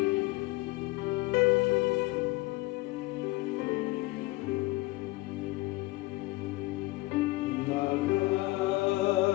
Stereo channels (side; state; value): right; quieter; 21.3 dB